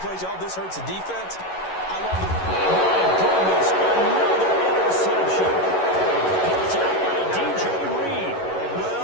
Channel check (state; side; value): late; right; 11 ms